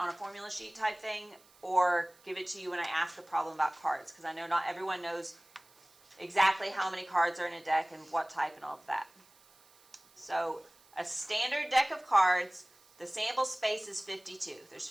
a formula sheet type thing, or give it to you when I ask a problem about cards, because I know not everyone knows exactly how many cards are in a deck and what type and all of that. So a standard deck of cards, the sample space is 52. There's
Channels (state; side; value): noise; right; hiss, 28 dB below the sound